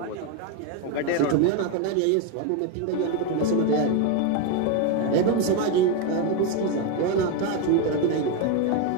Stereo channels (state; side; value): different; both; correlation 0.02